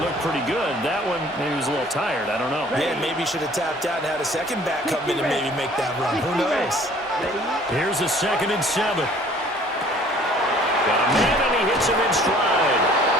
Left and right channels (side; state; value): both; normal; correlation 0.54